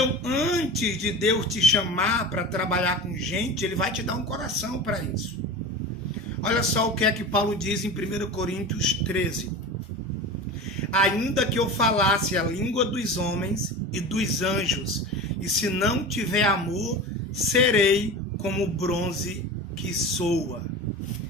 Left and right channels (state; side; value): normal; both; correlation 0.31